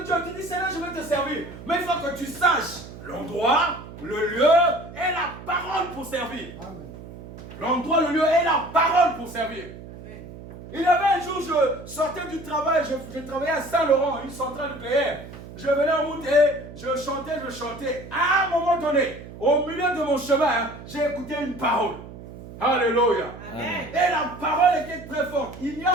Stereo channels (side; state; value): right; noise; hum, 15 dB below the sound